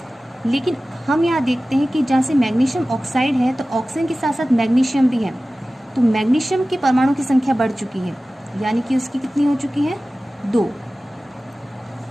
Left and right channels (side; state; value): both; normal; correlation 0.96